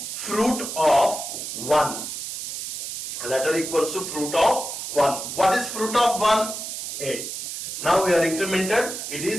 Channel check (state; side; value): noise; right; hiss, 6 dB below the sound